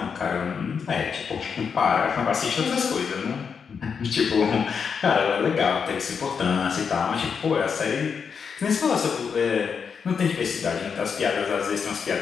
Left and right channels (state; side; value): quieter; right; 6.3 dB